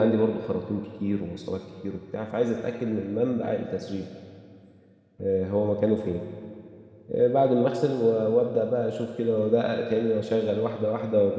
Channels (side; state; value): both; identical; correlation 1.00